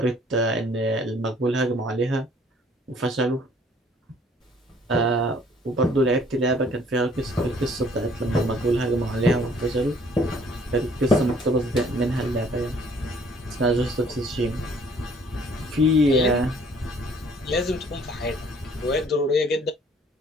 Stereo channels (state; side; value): normal; both; correlation 0.59